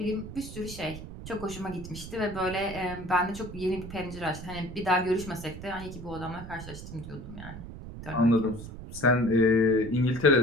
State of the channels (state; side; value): noise; right; rumble, 11 dB below the sound